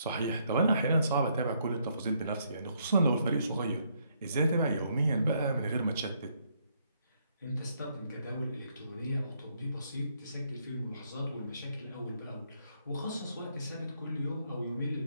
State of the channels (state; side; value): inverted; both; correlation -0.72